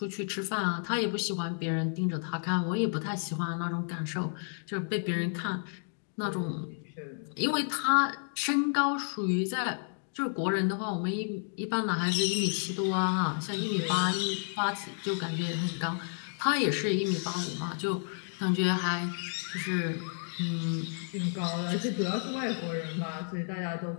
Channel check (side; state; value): right; silent; 56 dB below the other